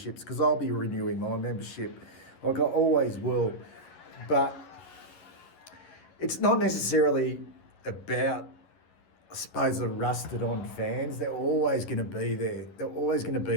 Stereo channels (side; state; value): right; late; 11 ms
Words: because I'll be renewing my membership, like I always will. But it's not necessarily about, I suppose, the rusted on fans. They're always going to be there. They're always going to